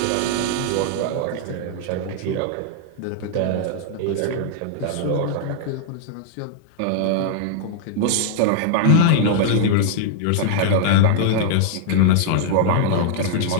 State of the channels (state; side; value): different; both; correlation -0.01